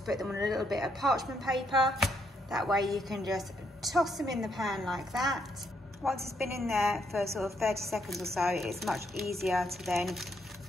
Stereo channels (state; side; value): normal; both; correlation 0.75